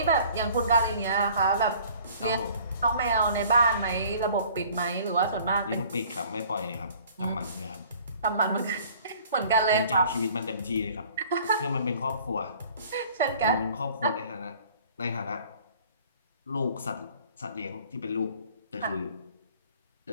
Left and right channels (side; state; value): both; inverted; correlation -0.52